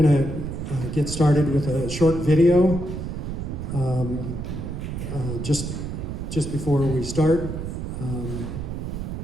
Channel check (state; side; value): noise; right; rumble, 5 dB below the sound